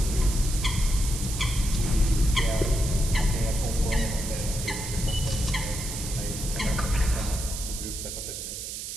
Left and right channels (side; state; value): right; noise; hiss, 7 dB below the sound